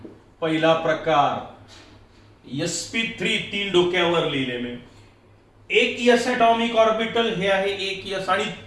पहिला प्रकार sp3, 3 डोक्यावर लिहिले मी. एक s ॲटॉमिक ऑर्बिटल हे आहे एक s आणि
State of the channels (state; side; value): identical; both; correlation 1.00